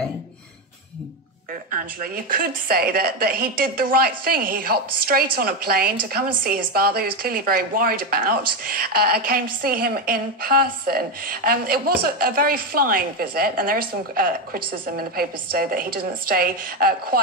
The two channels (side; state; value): both; normal; correlation 0.10